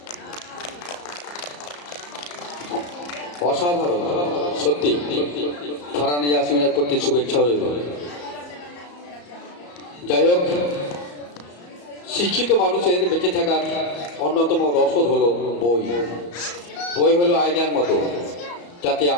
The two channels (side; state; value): right; late; 34 ms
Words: অসাধারণ সত্যি ফারহানা ইয়াসমিনের প্রতি শুভেচ্ছা রইল। যাই হোক, শিক্ষিত মানুষের বেঁচে থাকার অন্যতম রসদ হলো বই। বই হলো আয়নার মতো, যাতে